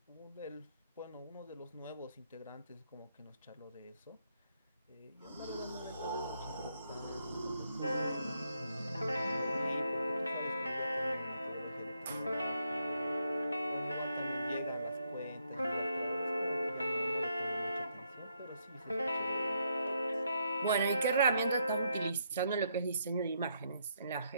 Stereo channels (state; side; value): inverted; both; correlation -0.76